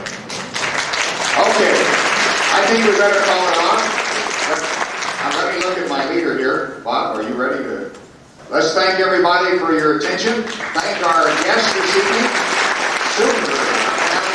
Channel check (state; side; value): identical; both; correlation 1.00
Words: I think we better call it on. Now let me look at my leader here. Bob, are you ready to? Let's thank everybody for your attention. Thank our guests this evening. Super.